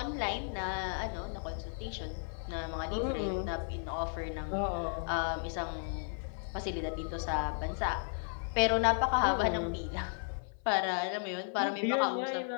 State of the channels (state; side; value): silent; right; 55 dB below the other